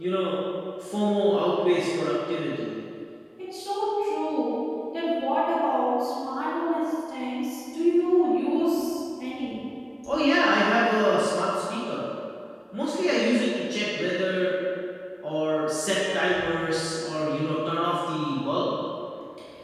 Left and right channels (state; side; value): identical; both; correlation 1.00